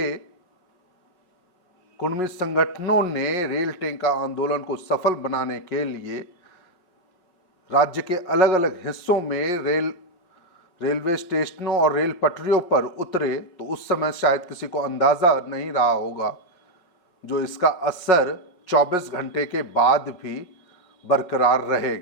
कुर्मी संगठनों ने रेल टेका आंदोलन को सफल बनाने के लिए राज्य के अलग अलग हिस्सों में रेलवे स्टेशनों और रेल पटरियों पर उतरे, तो उस समय शायद किसी को अंदाजा नहीं रहा होगा जो इसका असर 24 घंटे के बाद भी बरकरार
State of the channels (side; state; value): right; late; 5.5 ms